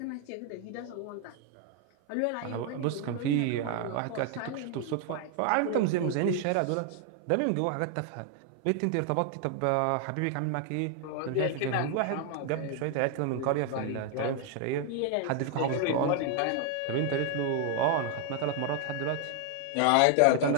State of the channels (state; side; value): different; both; correlation 0.00